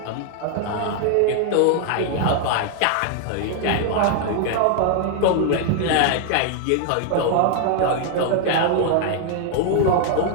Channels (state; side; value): different; both; correlation 0.00